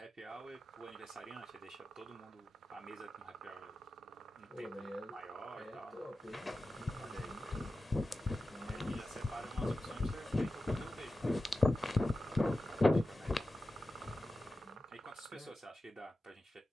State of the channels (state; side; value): normal; both; correlation 0.93